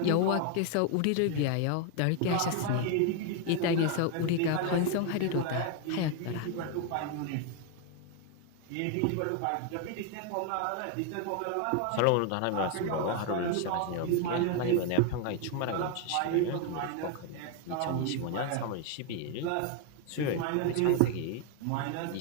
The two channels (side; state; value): both; different; correlation 0.01